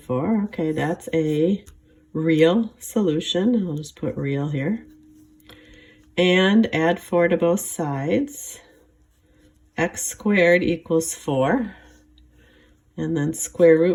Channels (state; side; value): identical; both; correlation 1.00